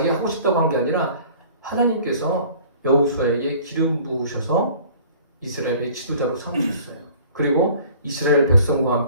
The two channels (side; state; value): both; inverted; correlation -0.49